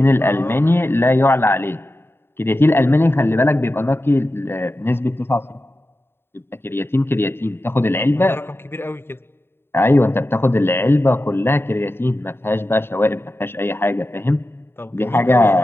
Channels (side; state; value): right; late; 0.11 ms